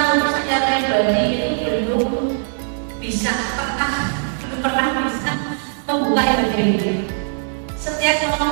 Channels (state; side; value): silent; left; 66 dB below the other